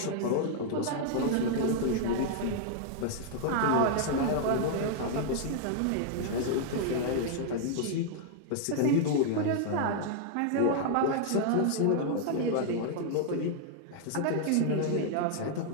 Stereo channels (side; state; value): both; different; correlation -0.01